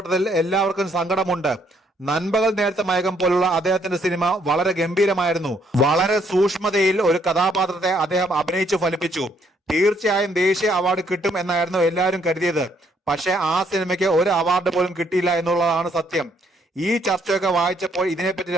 എല്ലാവർക്കും സങ്കടമുണ്ട്. നൻപകൽ നേരത്തെ മയക്കം പോലുള്ള അദ്ദേഹത്തിന്റെ സിനിമ വളരെ ഗംഭീരമായിരുന്നു. വളരെ സൂക്ഷ്മതയിൽ ഒരു കഥാപാത്രത്തെ അദ്ദേഹം അഭിനയിച്ചു ഫലിപ്പിച്ചു. തീർച്ചയായും ദേശീയ അവാർഡ് കിട്ടും എന്നായിരുന്നു എല്ലാവരും കരുതിയത്. പക്ഷെ ആ സിനിമയ്ക്ക് ഒരു അവാർഡ് പോലും കിട്ടിയില്ല എന്നുള്ളതാണ് സത്യം. ഈ ചർച്ചയൊക്കെ വായിച്ചപ്പോൾ ഇതിനെപ്പറ്റി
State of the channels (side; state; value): both; normal; correlation 0.69